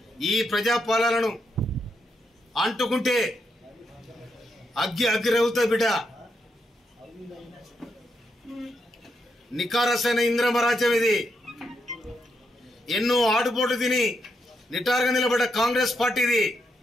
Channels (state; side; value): normal; both; correlation 0.81